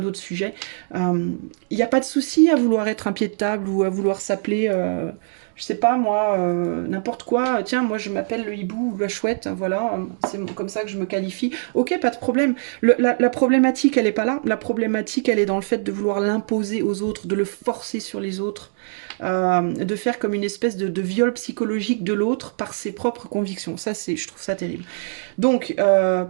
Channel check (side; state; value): left; silent; digital silence